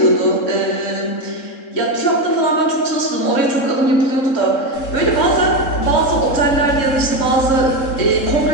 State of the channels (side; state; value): right; late; 3.7 ms